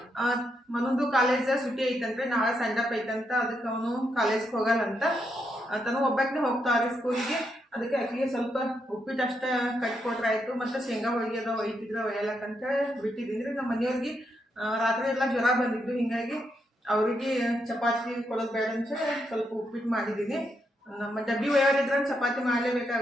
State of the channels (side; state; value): both; normal; correlation 0.80